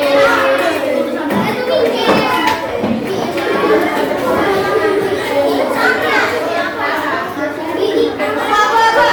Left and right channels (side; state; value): both; identical; correlation 1.00